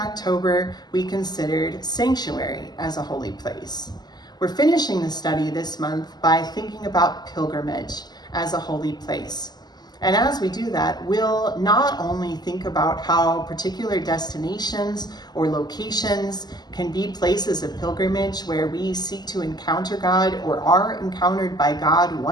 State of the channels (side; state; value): right; late; 0.20 ms